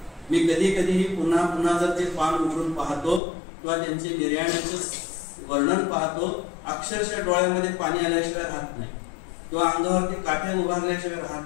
मी कधी कधीही पुन्हा पुन्हा जर ते पान उघडून पाहतो किंवा त्यांचे निर्याण्याचं वर्णन पाहतो, अक्षरशः डोळ्यामध्ये पाणी आल्याशिवाय राहत नाही किंवा अंगावरती काठ्या उभारल्याशिवाय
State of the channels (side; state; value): right; drops out; at 3.2 s